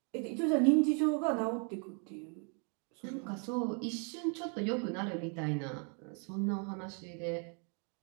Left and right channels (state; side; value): quieter; left; 39.5 dB